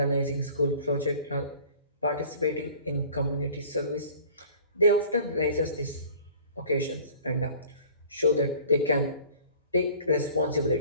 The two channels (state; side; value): inverted; both; correlation -0.48